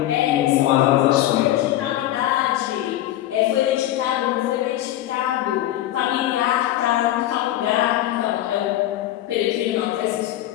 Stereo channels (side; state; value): right; quieter; 13.8 dB